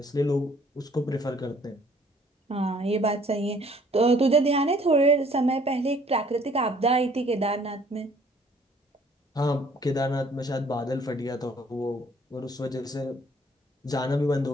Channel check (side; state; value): both; normal; correlation 0.59